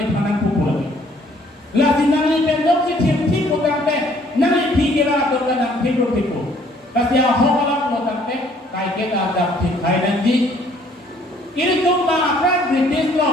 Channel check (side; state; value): both; normal; correlation 0.61